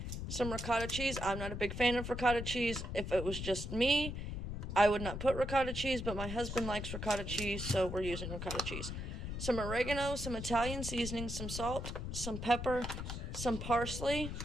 some ricotta cheese. I'm not a big fan of ricotta cheese. If it was just me, I would not put ricotta cheese, but my husband likes ricotta cheese, so we're using ricotta cheese. Some oregano, some Italian seasoning, some salt, some pepper, some parsley.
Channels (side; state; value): left; noise; rumble, 5 dB below the sound